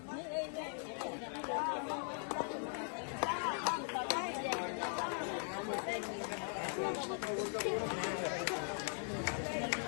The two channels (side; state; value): right; silent; 51 dB below the other